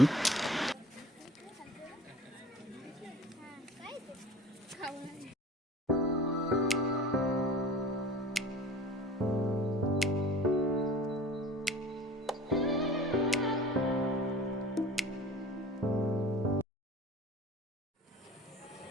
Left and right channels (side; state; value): both; normal; correlation 0.42